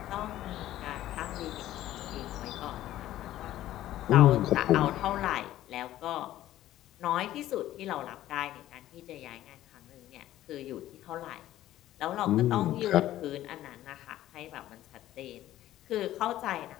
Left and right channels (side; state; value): right; quieter; 13.8 dB